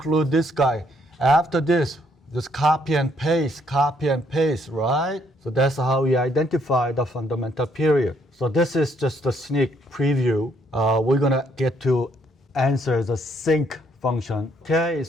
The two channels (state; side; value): normal; both; correlation 0.69